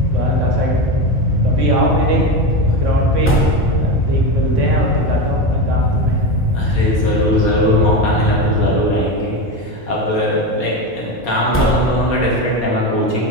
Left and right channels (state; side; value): normal; both; correlation 0.18